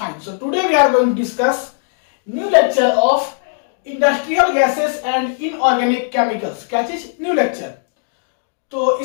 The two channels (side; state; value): right; silent; digital silence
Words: So today we are going to discuss new lecture of industrial gases and inorganic chemicals. क्या चीज? New lecture. तो